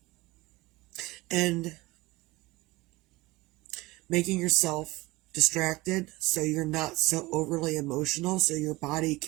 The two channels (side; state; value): left; quieter; 21.0 dB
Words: and making yourself distracted so you're not so overly emotional so your body